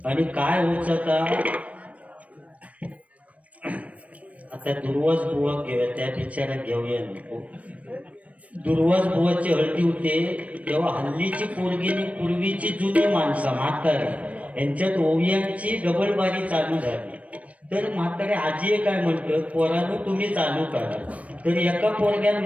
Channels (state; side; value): late; left; 0.066 ms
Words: आणि काय होत आता दुर्वास बुवा घेऊया, त्या बिचारा घेऊया नको. दुर्वास बुवाची हळदी होते तेव्हा हल्लीची पोरगीनी पूर्वीची जुनी माणसं म्हातारी यांच्यात ओवियांची डबलबारी चालू झाली. तर म्हातारे आजी काय म्हणतात, पोरांनो तुम्ही चालू करा. तर एका पोरग्यानं